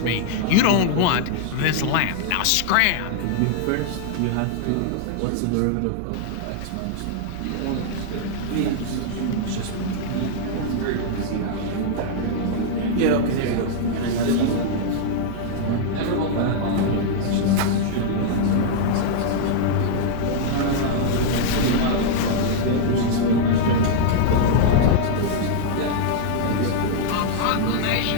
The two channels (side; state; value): both; different; correlation -0.01